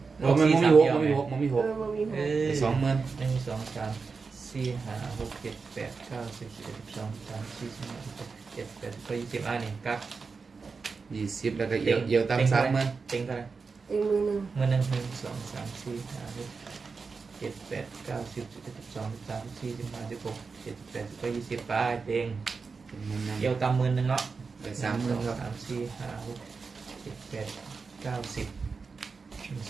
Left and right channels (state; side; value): quieter; left; 4.8 dB